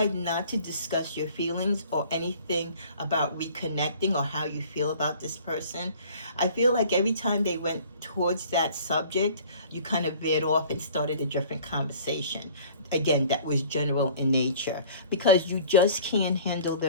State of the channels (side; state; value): both; inverted; correlation -0.49